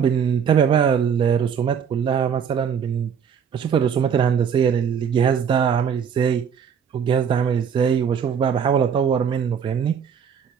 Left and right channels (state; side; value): quieter; left; 7.5 dB